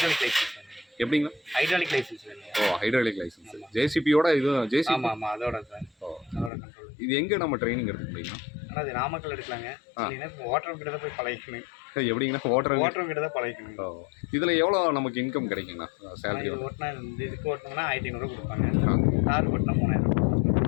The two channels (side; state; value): right; drops out; at 6.5 s